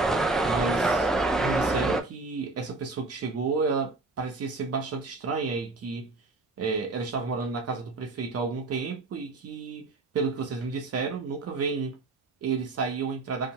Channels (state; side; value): quieter; left; 3.4 dB